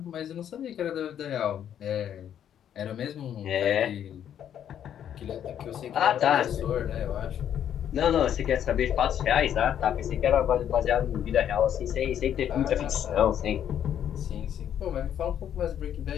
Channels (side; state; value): right; quieter; 9.7 dB